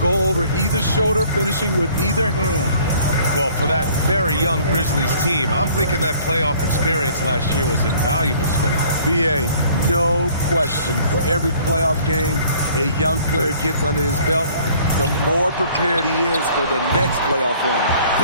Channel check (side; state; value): both; inverted; correlation -0.55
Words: over either shoulder, finishing with either hand. Well, for that very young Grizzlies team, I'm thinking that playoff experience last year was invaluable, Smitty. BA, no question. For every playoff game a young player gets under his belt, the more prepared he is for the next playoff run.